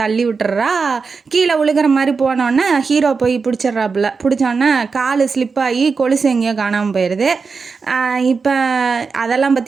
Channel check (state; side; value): quieter; left; 4.9 dB